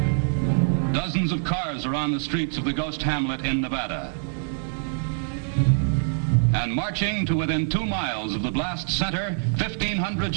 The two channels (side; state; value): left; silent; 62 dB below the other